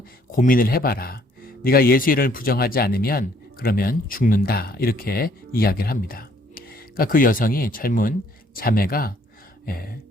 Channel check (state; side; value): normal; both; correlation 0.64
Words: 고민을 해봐라. 네가 예수 이름을 부정하지 않으면 그러면 죽는다. 이렇게 이야기를 합니다. 그러니까 그 여성이 젊은 자매가